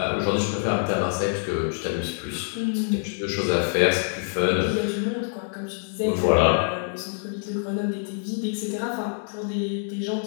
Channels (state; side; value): silent; right; 61 dB below the other